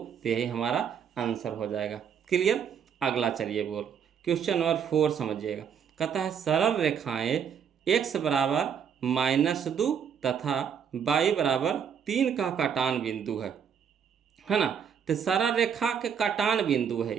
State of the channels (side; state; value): left; quieter; 7.6 dB